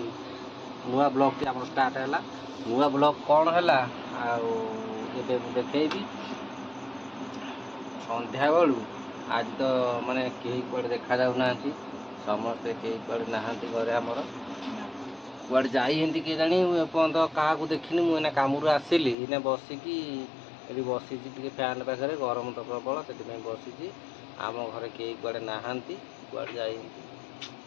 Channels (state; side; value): drops out; right; at 19.2 s